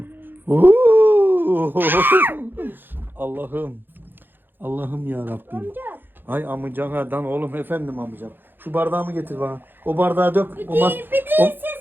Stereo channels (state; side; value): late; left; 0.097 ms